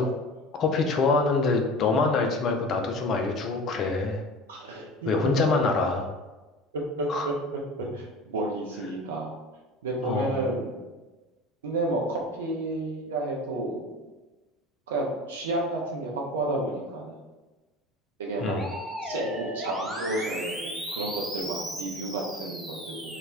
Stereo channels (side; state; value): both; normal; correlation 0.35